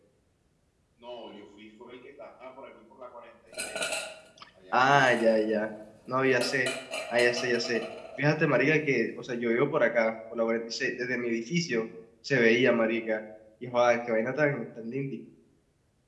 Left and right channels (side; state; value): both; identical; correlation 1.00